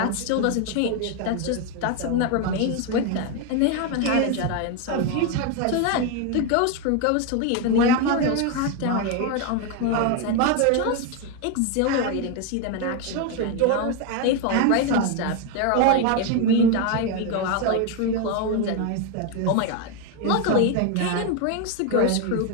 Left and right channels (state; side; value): different; both; correlation 0.02